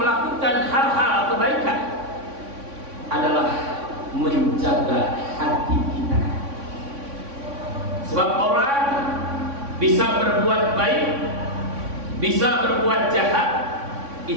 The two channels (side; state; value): left; late; 3.6 ms